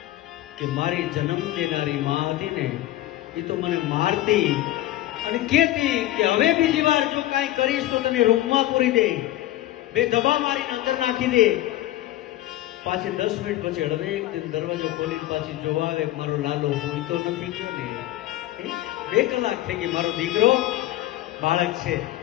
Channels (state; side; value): quieter; right; 15.2 dB